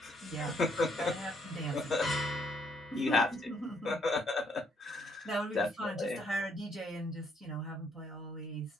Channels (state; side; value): normal; both; correlation 0.70